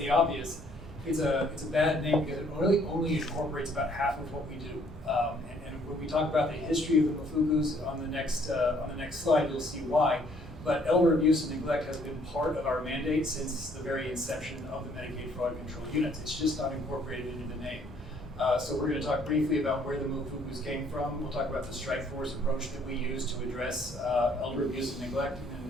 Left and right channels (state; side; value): normal; both; correlation 0.63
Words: obvious, it's a bad name because it only incorporates about half of what we do. And when we talk about the history of the MFUCUs on the next slide, you'll see why. But elder abuse and neglect has been part of our mandate since the very inception of the Medicaid Fraud Control Units. It's just not incorporated into the name. So we're going to talk briefly about where the MFUCUs came from. We'll talk about the strike force approach that we use to address elder abuse and neglect,